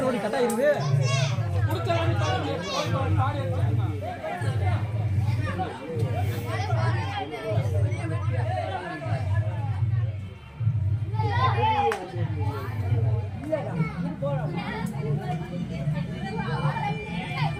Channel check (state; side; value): identical; both; correlation 1.00